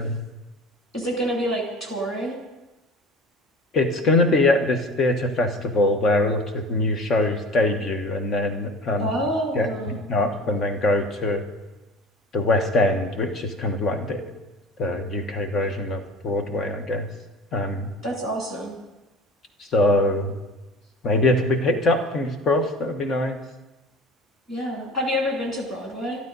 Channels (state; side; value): normal; both; correlation 0.39